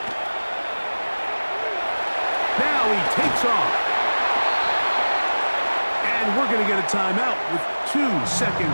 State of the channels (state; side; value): inverted; both; correlation -1.00